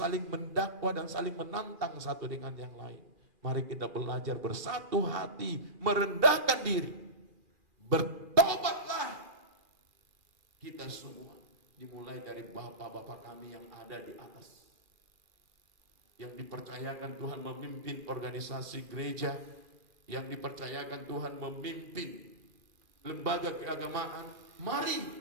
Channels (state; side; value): late; left; 2.4 ms